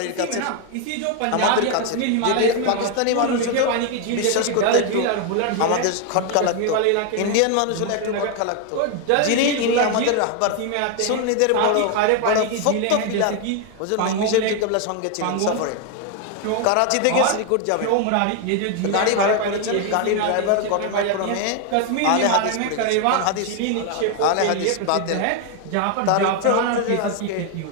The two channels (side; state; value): both; different; correlation 0.01